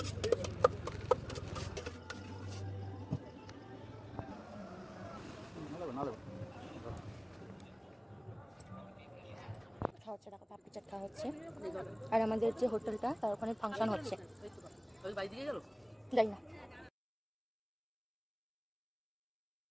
খাওয়া হচ্ছে, টাকা পাপড়ি চাট খাওয়া হচ্ছে। আর আমাদের যে হোটেলটা তার ওখানে ফাংশন হচ্ছে, বাড়ি দিকে গেল যাই না।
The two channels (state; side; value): identical; both; correlation 1.00